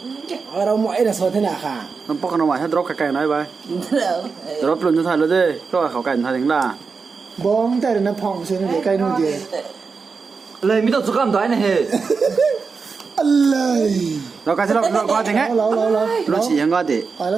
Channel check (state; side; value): quieter; left; 5.0 dB